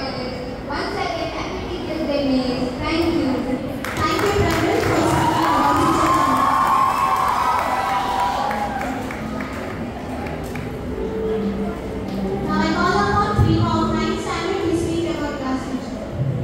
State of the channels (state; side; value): identical; both; correlation 1.00